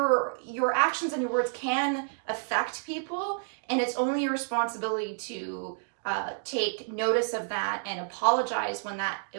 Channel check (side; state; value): left; silent; digital silence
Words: actions and your words can affect people, and it's only your responsibility to take notice of that and apologize